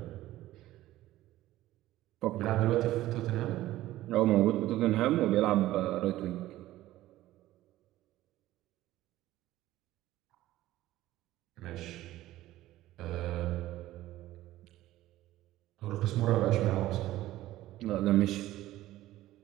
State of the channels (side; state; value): left; quieter; 15.4 dB